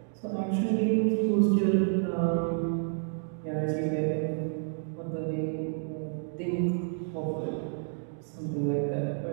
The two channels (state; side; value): silent; left; digital silence